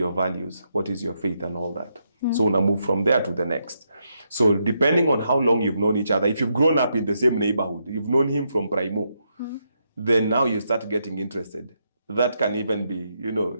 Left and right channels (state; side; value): inverted; both; correlation -0.80